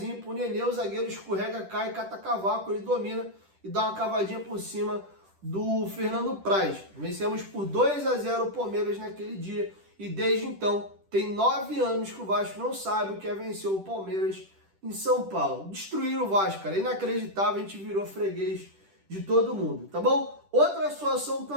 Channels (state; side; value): late; left; 10 ms